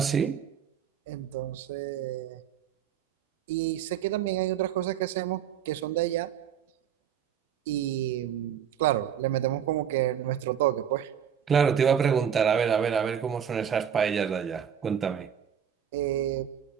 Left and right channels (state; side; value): quieter; left; 8.6 dB